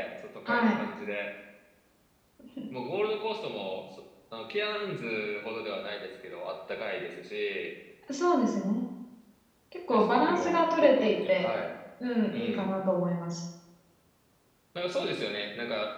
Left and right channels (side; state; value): both; identical; correlation 1.00